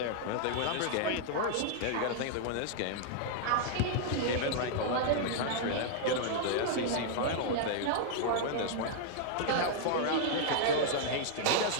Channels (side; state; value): both; different; correlation -0.01